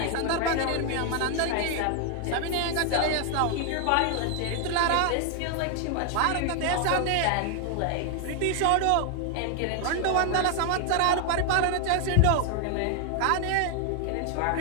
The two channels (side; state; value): both; different; correlation 0.00